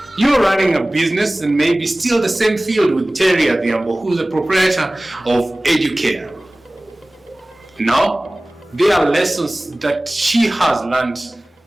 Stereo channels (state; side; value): normal; both; correlation 0.98